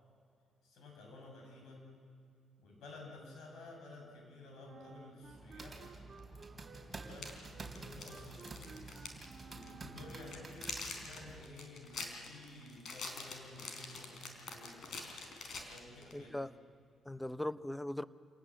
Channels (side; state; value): both; normal; correlation 0.80